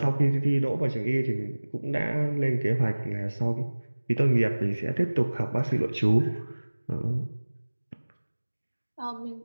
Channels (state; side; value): inverted; both; correlation -1.00